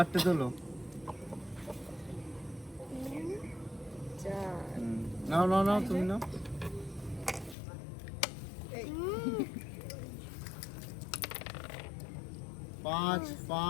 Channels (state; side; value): drops out; right; at 7.6 s